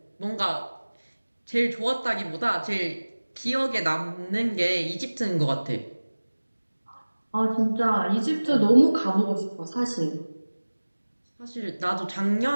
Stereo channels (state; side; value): inverted; both; correlation -1.00